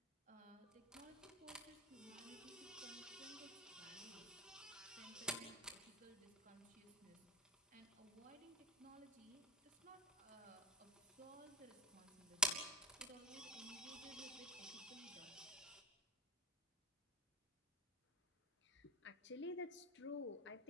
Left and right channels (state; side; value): normal; both; correlation 0.16